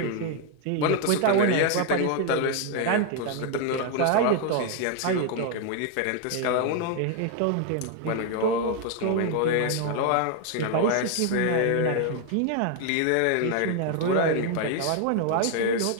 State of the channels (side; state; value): both; different; correlation 0.01